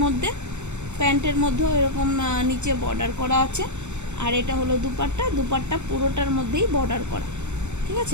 মধ্যে, প্যান্টের মধ্যেও এরকম নিচে বর্ডার করা আছে। আর এটা হলো দুপাট্টা, দুপাট্টা পুরোটার মধ্যেই বর্ডার করা। ঠিক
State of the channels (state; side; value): late; left; 0.83 ms